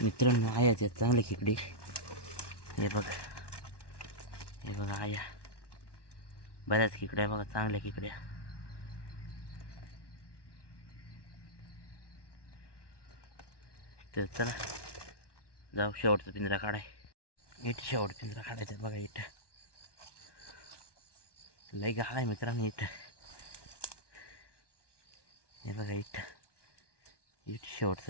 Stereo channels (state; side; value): late; right; 1.1 ms